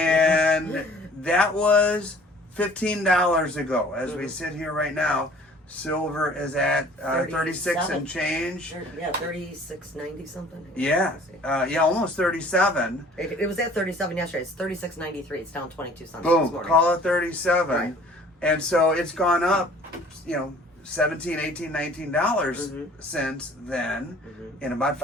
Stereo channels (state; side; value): normal; both; correlation 0.51